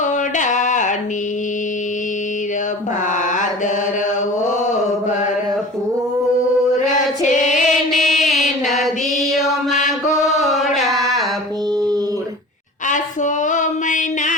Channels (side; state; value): both; normal; correlation 0.39